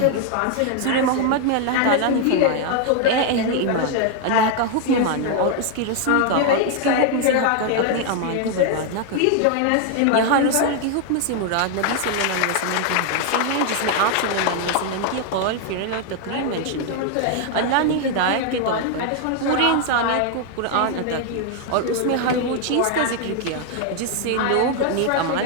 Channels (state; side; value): different; both; correlation 0.00